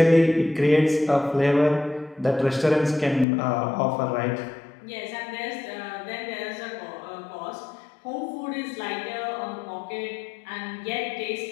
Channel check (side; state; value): right; drops out; at 3.2 s